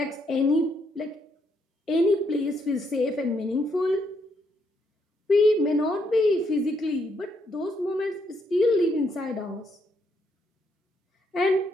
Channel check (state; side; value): normal; both; correlation 0.75